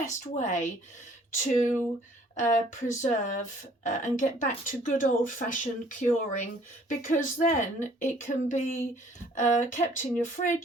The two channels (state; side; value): normal; both; correlation 0.58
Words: way to preserve and get back to good old-fashioned curing, because then it can be kept in your